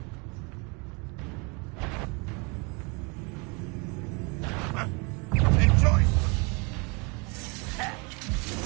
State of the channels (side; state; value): left; quieter; 30.7 dB